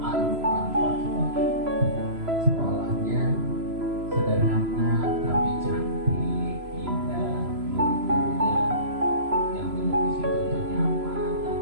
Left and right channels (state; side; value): late; left; 3.0 ms